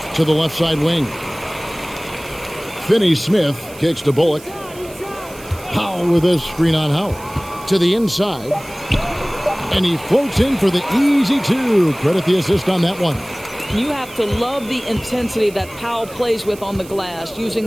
to the left side wing. Finney-Smith kicks to Bullock. Powell with a screen on Howard. To the inside. And he floats in for the easy 2. Credit the assist on that one. You have to love the intensity that Powell plays with on the glass, using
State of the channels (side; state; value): right; noise; hiss, 19 dB below the sound